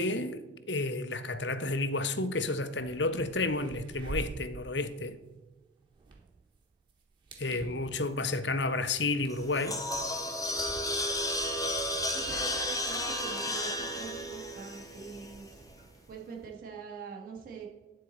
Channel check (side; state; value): both; normal; correlation 0.18